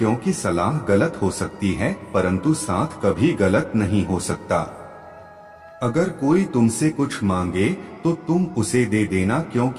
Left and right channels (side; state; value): both; identical; correlation 1.00